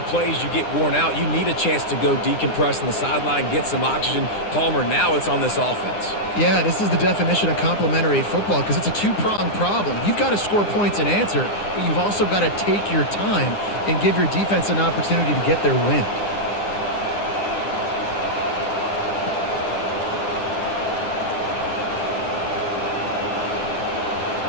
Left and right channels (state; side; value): late; right; 9.8 ms